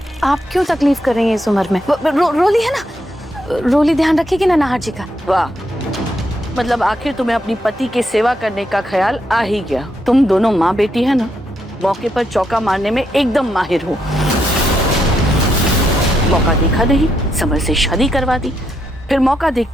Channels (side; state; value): both; normal; correlation 0.79